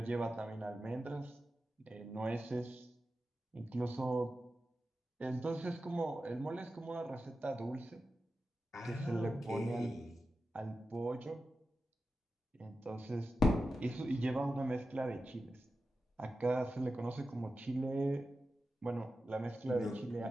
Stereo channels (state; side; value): normal; both; correlation 0.92